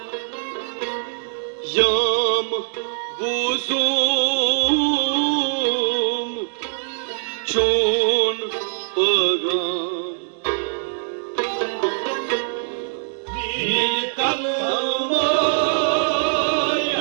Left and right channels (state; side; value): silent; left; digital silence